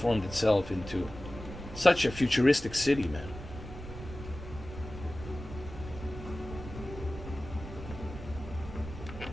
itself into such a futuristic city, man.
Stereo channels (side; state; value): right; noise; rumble, 11 dB below the sound